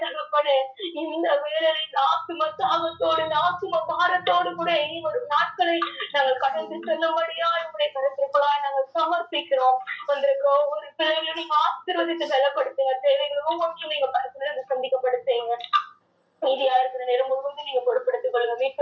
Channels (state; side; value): identical; both; correlation 1.00